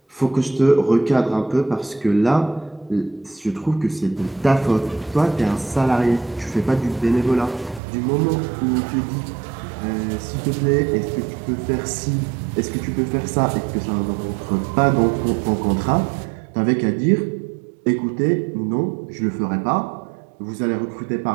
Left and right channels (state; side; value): drops out; left; at 7.8 s